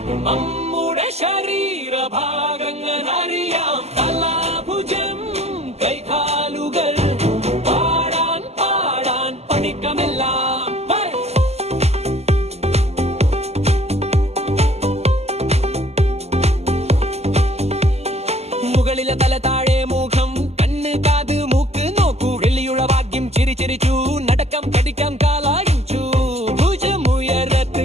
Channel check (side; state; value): left; late; 0.30 ms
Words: നമ്മുടെ ശരീരഭാഗങ്ങൾ അറിയാം, തലാഭുജം കൈകാലുകൾ, പാടാൻ പാടാൻ പഠിക്കാമെല്ലാം. മുകളിലെ തല, താഴെ മുഖം, കണ്ണ്, കാത്, മൂക്ക് നോക്കൂ. വെള്ളിയുള്ള ഭാഗ്യം ചിരി ചിരിച്ചു, നടക്കാം കടിക്കാം കാലായിച്ചു. ഭുജമുയരത്ത്